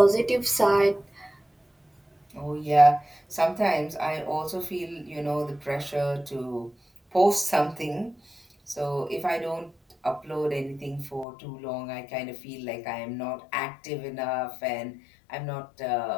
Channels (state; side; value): drops out; right; at 11.2 s